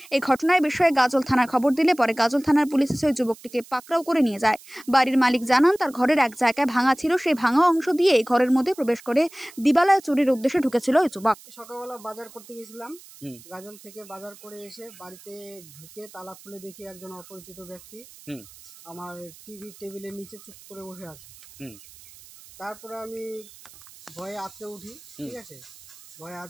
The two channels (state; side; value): noise; right; hiss, 21 dB below the sound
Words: এই ঘটনার বিষয়ে গাজল থানার খবর দিলে পরে গাজল থানার পুলিশ এসে ওই যুবকটিকে পাকড়াও করে নিয়ে যায়। বাড়ির মালিক জানান তার ঘরের এক জায়গায় ভাঙা ছিল, সেই ভাঙা অংশ দিয়ে ঘরের মধ্যে প্রবেশ করে দিবালয়ে চুরির উদ্দেশ্যে ঢুকেছিল ওই যুবক। সকালবেলা বাজার করতে গেছিলাম, গাজল থেকে বাজার করে এসে বাড়িতে ঢুকে তালা খুলে দেখি একজন অপরিচিত ব্যক্তি আমার টেবিলের নিচে চুপ করে বসে আছে। তারপরে আমি ভয়ে আঁতকে উঠি, ঠিক আছে, ভয়ে